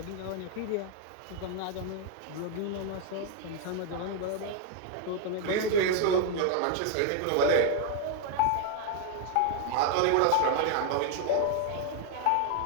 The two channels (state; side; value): different; both; correlation 0.00